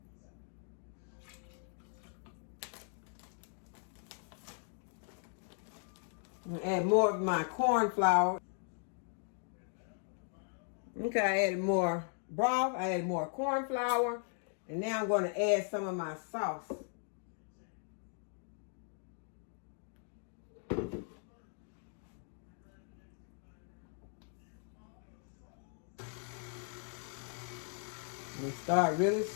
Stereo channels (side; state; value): right; silent; 52 dB below the other